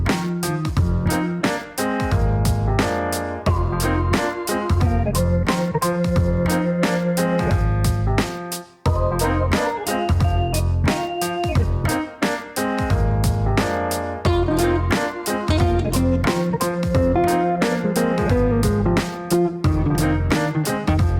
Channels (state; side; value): identical; both; correlation 1.00